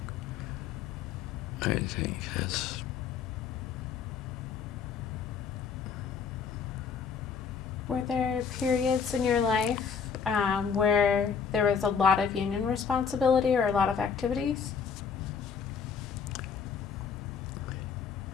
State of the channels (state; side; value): quieter; right; 6.4 dB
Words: I think that's. Were there periods in your life where there was a lot of union responsibility or a lot of activities?